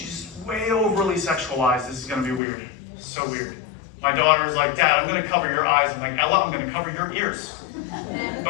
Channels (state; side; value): drops out; right; at 2.4 s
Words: way overly sexualized. This is going to be weird. So weird. My daughter's like, Dad, I'm going to cover your eyes. I'm like, Ella, I'm going to cover your ears.